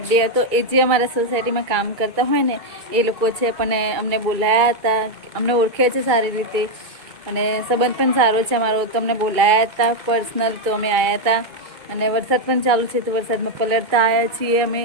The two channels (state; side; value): late; left; 2.3 ms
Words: હતો એ જે અમારા સોસાયટીમાં કામ કરતા હોય ને એ લોકો છે પણ અમને બોલાયા હતા અમને ઓળખે છે સારી રીતે અને સંબંધ પણ સારો છે અમારો તો અમને બોલાયા હતા પર્સનલ તો અમે આવ્યા હતા અને વરસાદ પણ ચાલુ છે તો વરસાદમાં પલળતા આવ્યા છીએ અમે